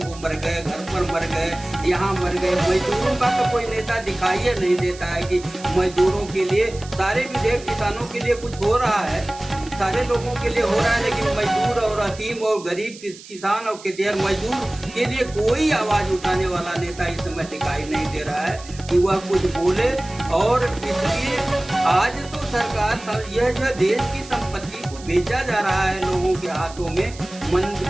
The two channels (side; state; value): right; noise; hiss, 18 dB below the sound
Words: मर गए, घर पर मर गए, यहाँ मर गए। मजदूरों का तो कोई नेता दिखाई नहीं देता है कि मजदूरों के लिए सारे विधेयक किसानों के लिए कुछ हो रहा है, सारे लोगों के लिए हो रहा है, लेकिन मजदूर और अतीम और गरीब किसान और खेतिहर मजदूर के लिए कोई आवाज उठाने वाला नेता इस समय दिखाई नहीं दे रहा है कि वह कुछ बोले। और इसलिए आज तो सरकार यह जो देश की संपत्ति को बेचा जा रहा है लोगों के हाथों में।